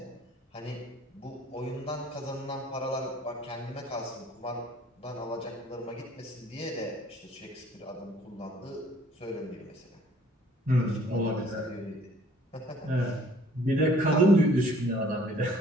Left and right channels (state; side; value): normal; both; correlation 0.56